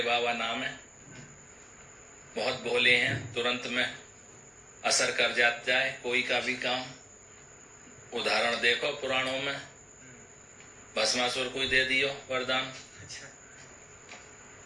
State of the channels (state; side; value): identical; both; correlation 1.00